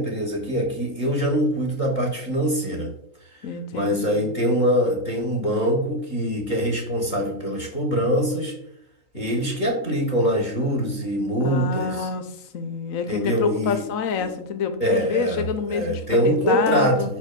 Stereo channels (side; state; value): right; late; 3.7 ms